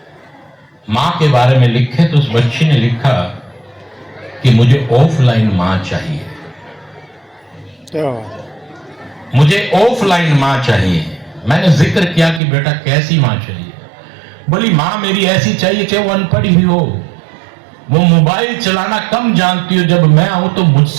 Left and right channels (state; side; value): drops out; left; at 12.4 s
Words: माँ के बारे में लिखे। तो उस बच्ची ने लिखा कि मुझे ऑफलाइन माँ चाहिए, मुझे ऑफलाइन माँ चाहिए। मैंने जिक्र किया कि बेटा कैसी माँ चाहिए? बोली माँ मेरी ऐसी चाहिए कि वो अनपढ़ ही हो, वो मोबाइल चलाना कम जानती हो, जब मैं आऊं तो